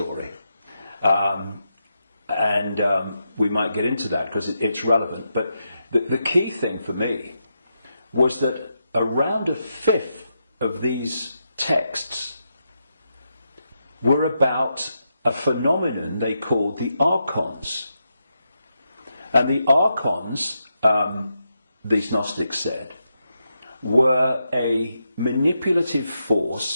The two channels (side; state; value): both; inverted; correlation -0.84